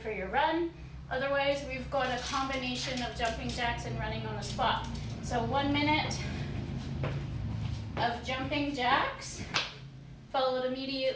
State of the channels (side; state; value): both; identical; correlation 1.00